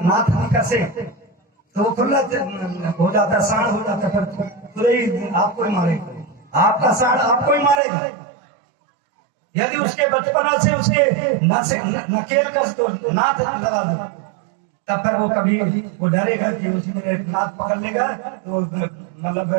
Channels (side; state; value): left; drops out; at 7.8 s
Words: नाथ नहीं कसे तो वो खुला हो जाता, साढ़ हो जाता, फिर तुरंत आपको ही मारेगा, आपका साढ़ आपको ही मारेगा। यदि उसके बचपना से उसके नकेल कस दो, नाथ लगा दो, तब फिर वो कभी वो डरेगा कि उसमें नाथ पकड़ लेगा तो